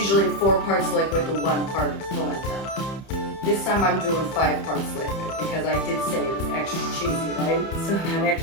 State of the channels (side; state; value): right; late; 31 ms